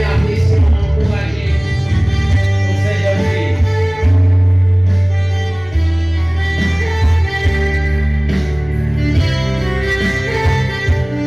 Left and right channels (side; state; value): left; noise; hum, 21 dB below the sound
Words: apprécier, encourager ces jeunes filles.